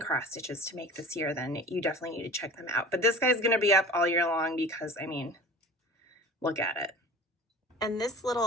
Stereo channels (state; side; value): normal; both; correlation 0.39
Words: stitches to make this year, then you definitely need to check them out. But this guy's going to be up all year long because, I mean, look at it. And this